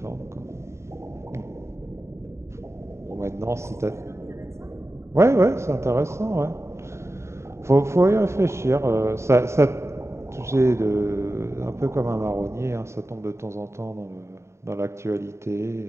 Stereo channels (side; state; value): left; late; 0.13 ms